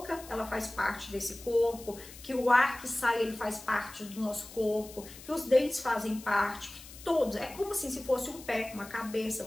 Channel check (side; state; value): left; noise; hiss, 17 dB below the sound